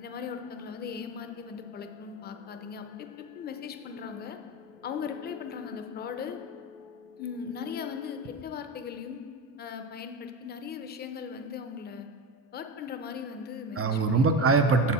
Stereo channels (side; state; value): both; normal; correlation 0.21